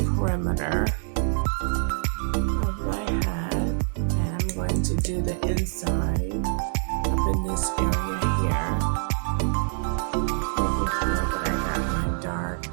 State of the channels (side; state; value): left; silent; 61 dB below the other